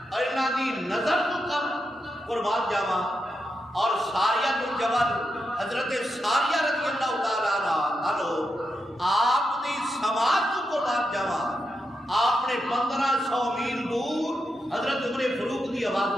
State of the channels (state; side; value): normal; both; correlation 0.86